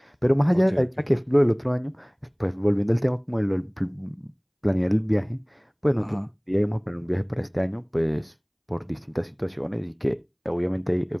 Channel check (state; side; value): identical; both; correlation 1.00